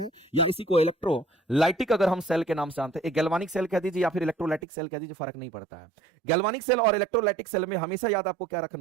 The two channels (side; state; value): left; drops out; at 4.6 s